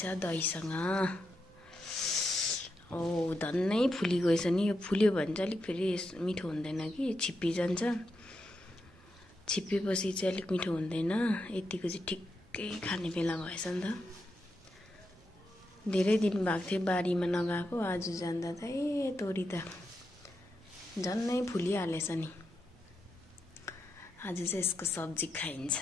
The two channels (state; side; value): normal; both; correlation 0.85